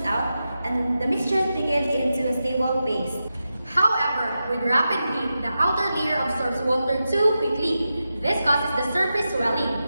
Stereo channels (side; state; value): both; inverted; correlation -0.90